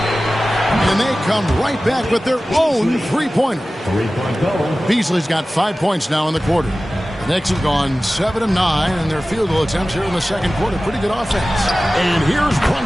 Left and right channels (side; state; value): both; normal; correlation 0.96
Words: And they come right back with their own three-pointer. Beasley's got 5 points now in the quarter. The Knicks have gone 7 of 9 in their field goal attempts here in the second quarter. Pretty good offense. And here's